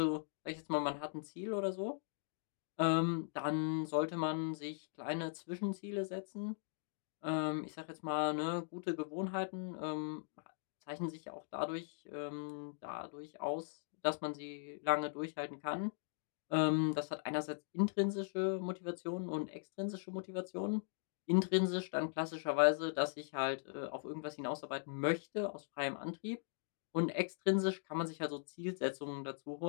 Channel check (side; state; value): right; silent; digital silence